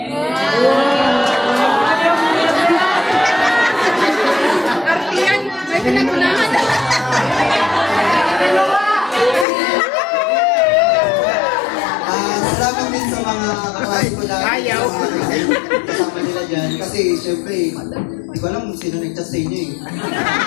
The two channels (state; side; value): drops out; right; at 9.5 s